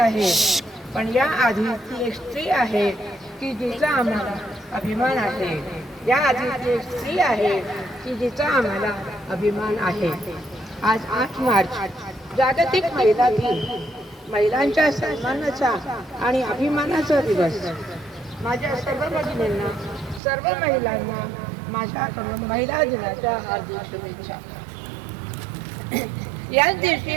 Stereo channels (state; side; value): drops out; left; at 20.2 s